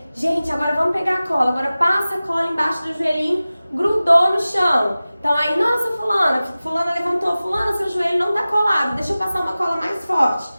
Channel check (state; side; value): inverted; both; correlation -0.97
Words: Gente, agora vamos pegar a cola, agora passa a cola embaixo do joelhinho, grudou no chão. Então aí, nossa, fulana levantou, fulana, seu joelho não tá colado, deixa eu passar uma cola mais forte,